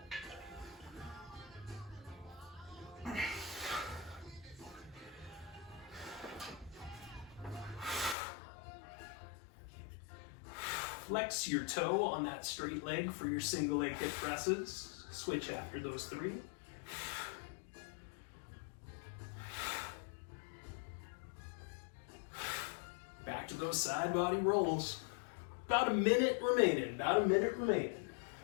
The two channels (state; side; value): drops out; right; at 8.2 s